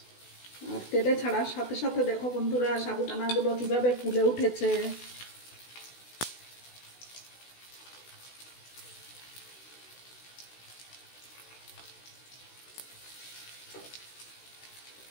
আর তেলে ছাড়ার সাথে সাথে দেখো বন্ধুরা, সাবুদানাগুলো কিভাবে ফুলে উঠেছে।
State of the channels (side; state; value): right; late; 16 ms